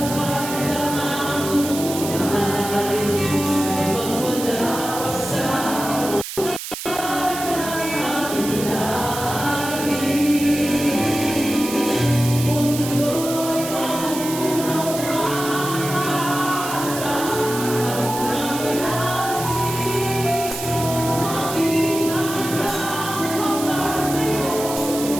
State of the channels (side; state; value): right; noise; hiss, 8 dB below the sound